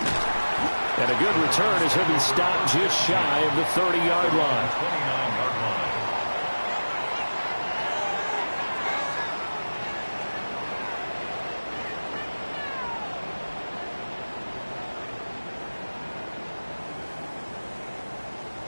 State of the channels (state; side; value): inverted; both; correlation -1.00